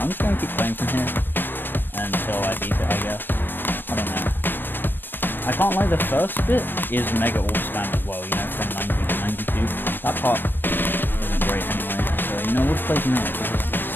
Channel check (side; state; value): right; late; 0.096 ms